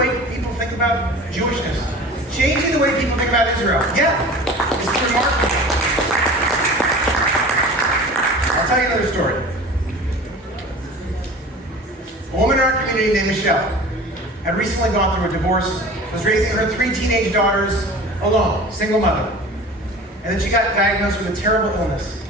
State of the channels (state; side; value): normal; both; correlation 0.39